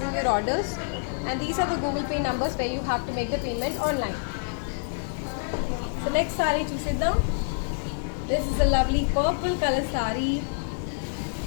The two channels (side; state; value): right; silent; digital silence